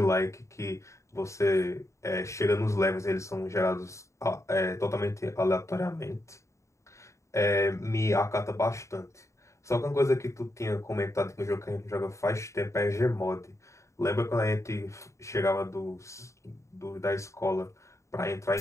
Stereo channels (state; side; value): late; right; 0.14 ms